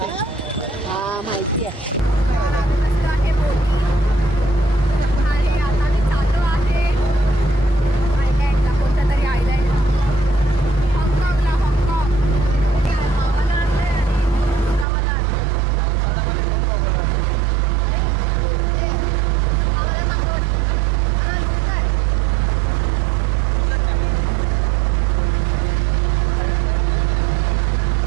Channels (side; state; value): left; drops out; at 14.9 s